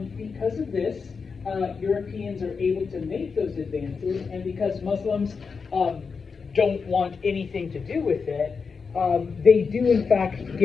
Because of this, Europeans are able to make those advances, and because Muslims don't want anything to do with it, they do in fact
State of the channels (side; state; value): right; quieter; 5.3 dB